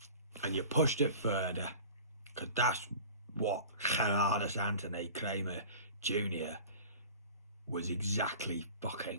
and you pushed it further, because that's what Gerardus Anthony Kramer Jr. was exactly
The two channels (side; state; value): both; inverted; correlation -0.40